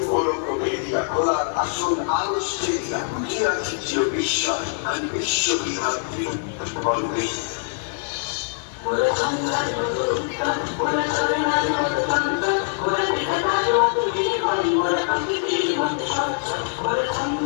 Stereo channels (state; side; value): silent; right; 63 dB below the other